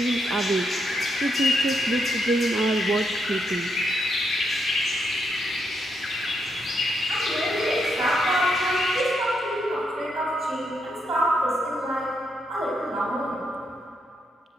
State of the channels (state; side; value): normal; both; correlation 0.79